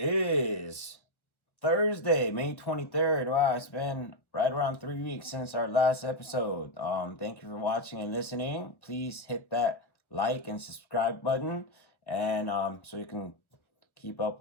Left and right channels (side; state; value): right; late; 1.1 ms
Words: Thursday, May 23rd. Wow, it's been right around 3 weeks since our last episode. Thank you for watching and listening. Please hit that like and subscribe button, and so you can keep up